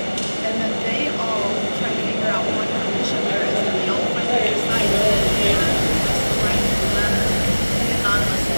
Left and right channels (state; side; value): inverted; both; correlation -1.00